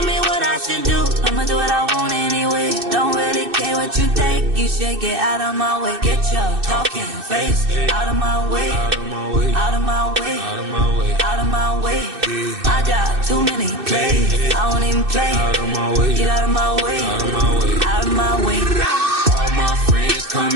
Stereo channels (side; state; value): left; late; 2.6 ms